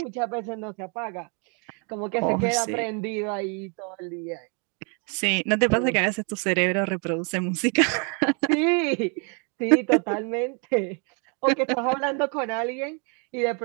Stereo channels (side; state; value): left; quieter; 37.1 dB